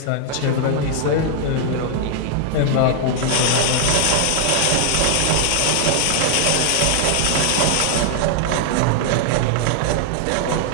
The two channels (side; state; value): both; different; correlation 0.00